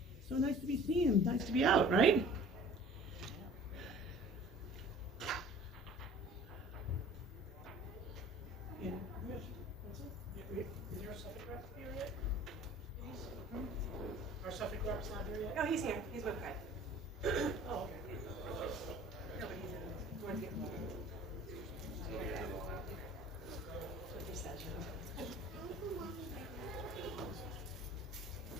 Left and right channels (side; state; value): both; normal; correlation 0.47